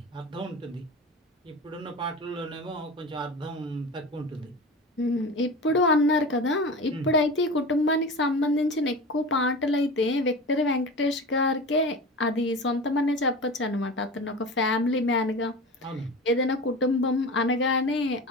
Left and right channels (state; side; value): normal; both; correlation 0.31